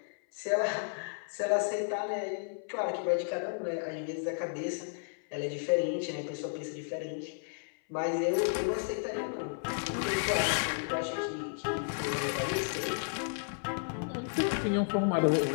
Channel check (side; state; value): right; silent; 56 dB below the other